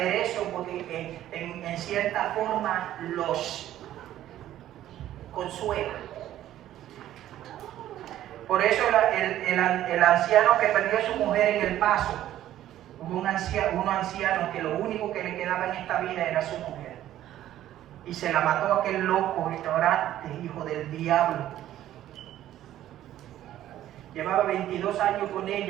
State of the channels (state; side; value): quieter; left; 12.7 dB